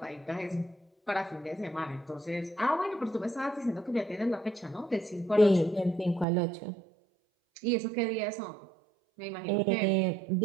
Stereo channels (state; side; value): drops out; left; at 6.2 s